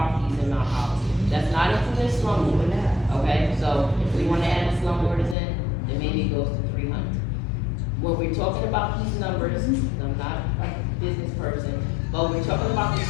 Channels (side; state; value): right; drops out; at 5.4 s